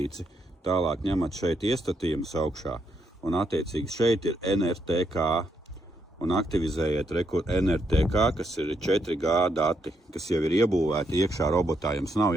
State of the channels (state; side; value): normal; both; correlation 0.77